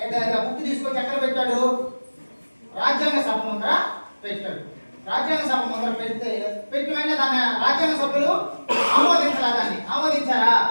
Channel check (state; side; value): inverted; both; correlation -1.00